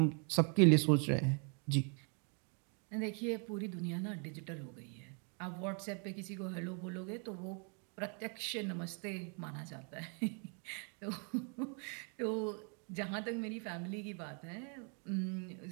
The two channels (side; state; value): left; quieter; 38.6 dB